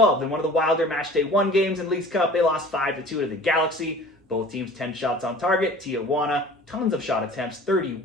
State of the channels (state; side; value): normal; both; correlation 0.44